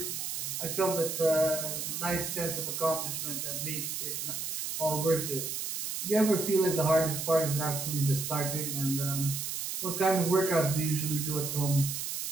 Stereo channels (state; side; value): noise; right; hiss, 4 dB below the sound